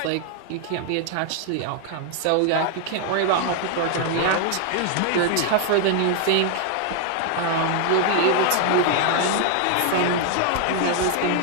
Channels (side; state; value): both; different; correlation 0.00